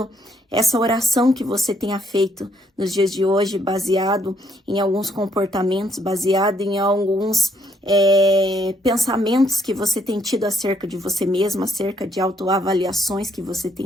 essa oração que você tenha feito nos dias de hoje, baseado em alguns comportamentos, baseado em alguns pensamentos que você tem tido acerca de você mesmo, acerca de autoavaliações que você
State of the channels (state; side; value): normal; both; correlation 0.70